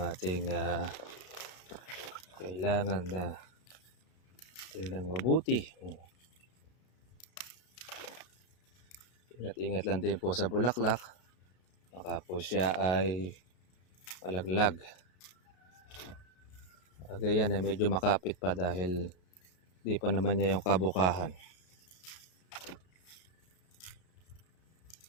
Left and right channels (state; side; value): late; right; 33 ms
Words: kailangan na tingnan mabuti. Ingat-ingat lang din po sa bulaklak. Baka po siya ay malaglag. Kagayan ay medyo makapit pa dahil di pa naman niya yung kabukahan.